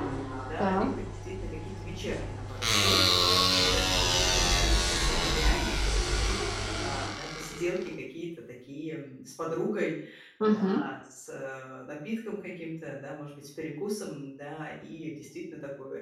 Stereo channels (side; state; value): both; identical; correlation 1.00